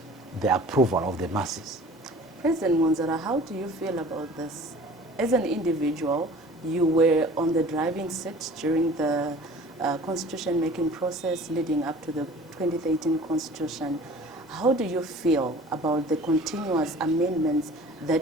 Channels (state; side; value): normal; both; correlation 0.45